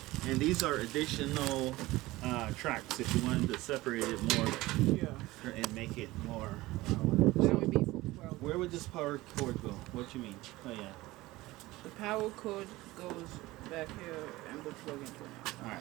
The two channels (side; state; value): left; quieter; 18.8 dB